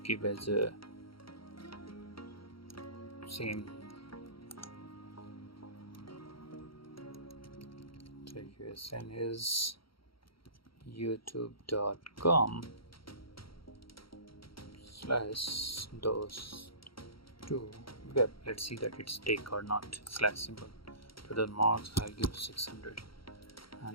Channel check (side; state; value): right; late; 0.74 ms